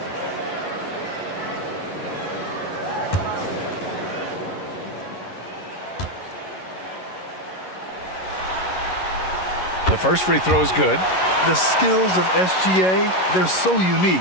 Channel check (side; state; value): right; late; 11 ms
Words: The first free throw is good. The skills of SGA, they're so